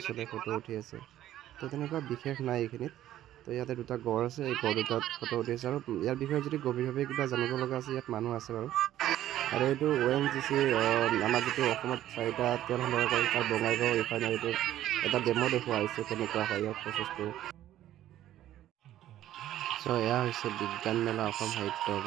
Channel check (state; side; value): quieter; left; 12.9 dB